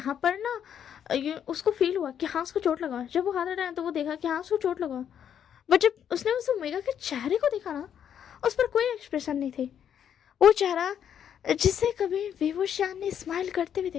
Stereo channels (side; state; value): right; quieter; 9.0 dB